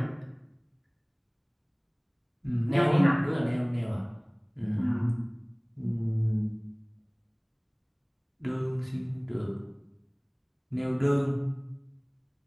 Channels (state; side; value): identical; both; correlation 1.00